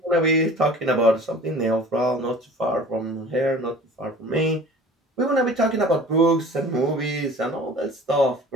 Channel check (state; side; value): normal; both; correlation 0.44